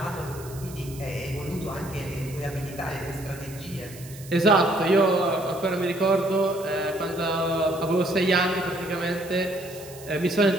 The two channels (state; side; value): noise; right; hiss, 18 dB below the sound